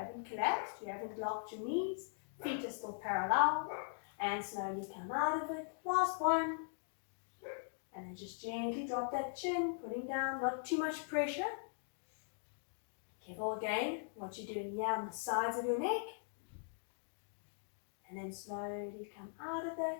collapsed. You haven't locked your knees. Feet are still parallel. And slowly come out of it. Last one. And then just gently drop that chin, putting down, not too much pressure. Careful again, what you're doing here on the sides of your neck. And then slowly come out of it.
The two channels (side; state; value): right; silent; digital silence